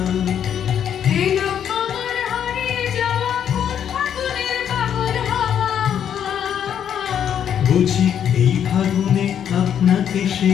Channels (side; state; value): right; quieter; 9.0 dB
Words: এলো আমার হারিয়ে যাওয়া কোন ফাগুনের পাগল হাওয়া। বুঝি এই ফাগুনে আপনাকে সে